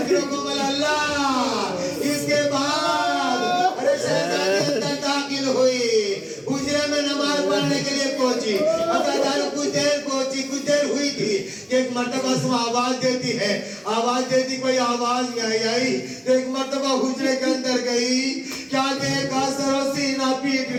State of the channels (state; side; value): identical; both; correlation 1.00